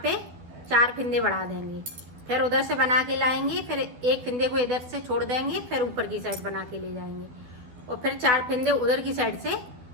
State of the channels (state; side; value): late; left; 12 ms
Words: पे 4 फिंदे बढ़ा देंगे। फिर उधर से बना के लाएंगे, फिर एक फिंदे को इधर से छोड़ देंगे, फिर ऊपर की साइड बना के ले जाएंगे और फिर 4 फिंदे उधर की साइड से